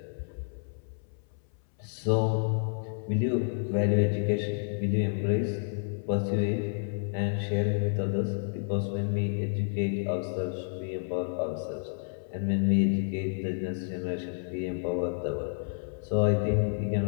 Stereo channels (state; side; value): silent; right; 58 dB below the other